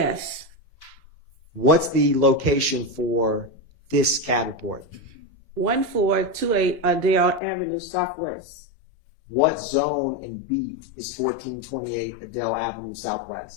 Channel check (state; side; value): drops out; right; at 7.4 s